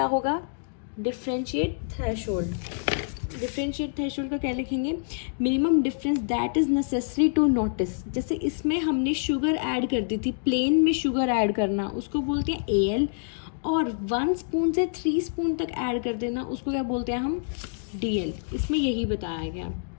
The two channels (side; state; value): right; silent; digital silence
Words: होगा, डिफरेंशिएट थ्रेशोल्ड। डिफरेंशिएट थ्रेशोल्ड का क्या लिखेंगे, minimum difference that is necessary to notice. जैसे इसमें हमने शुगर ऐड कर दी थी, प्लेन में शुगर ऐड करना उसको बोलते हैं AL, और 1 स्पून से 3 स्पून तक ऐड कर देना उसको क्या बोलते हैं हम, DL। इसमें यही बताया गया।